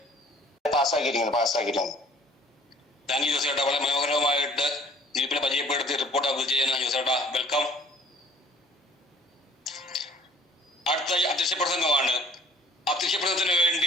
പാസ്സാക്കിയിരിക്കുന്നു. താങ്ക് യു ജോസേട്ടാ. വളരെ മനോഹരമായിട്ട് ദ്വീപിനെ പരിചയപ്പെടുത്തി റിപ്പോർട്ട് അപ്ലോഡ് ചെയ്യുന്ന ജോസേട്ടാ, വെൽക്കം. അടുത്ത അധ്യക്ഷ പ്രസംഗമാണ്. അധ്യക്ഷ പ്രസംഗത്തിന്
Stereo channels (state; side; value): normal; both; correlation 0.54